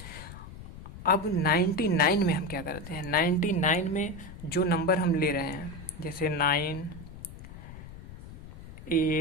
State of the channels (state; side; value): noise; left; rumble, 14 dB below the sound